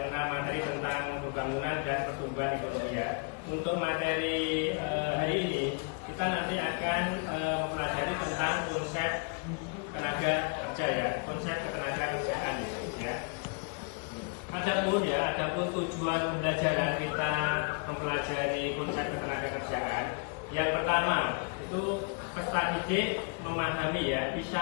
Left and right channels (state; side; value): quieter; right; 36.2 dB